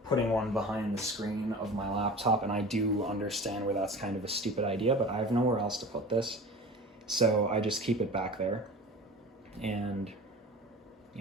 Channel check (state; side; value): normal; both; correlation 0.37